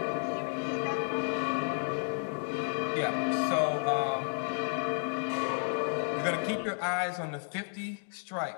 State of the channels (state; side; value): silent; right; 56 dB below the other